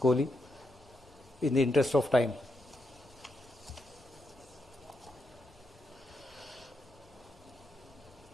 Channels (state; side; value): normal; both; correlation 0.82